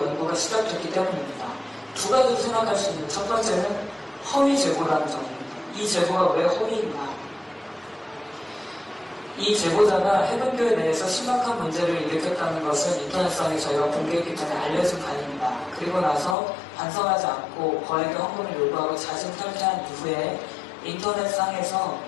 연구가 시작됐기 때문입니다. 두 가지로 생각할 수 있는 첫 번째는 허위 제보라는 점입니다. 이 제보가 왜 허위인가? 이 제보자가 해변교회 내에서 심각한 문제를 일으켰다는 것은 인터넷상에 저희가 공개했기 때문에 알려진 바입니다. 그리고 나서 반성하지 않고 거액의 헌금을 요구하고 자진 탈퇴한 이후에 인터넷상에서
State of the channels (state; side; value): drops out; right; at 16.4 s